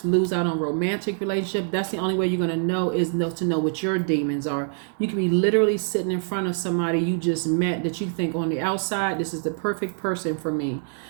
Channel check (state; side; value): silent; left; digital silence